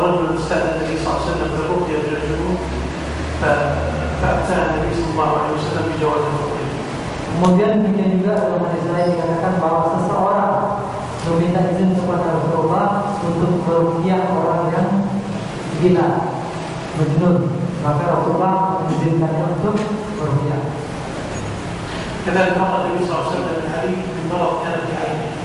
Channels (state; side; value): identical; both; correlation 1.00